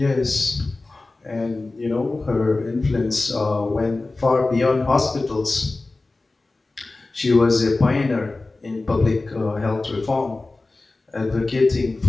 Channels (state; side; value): quieter; right; 3.3 dB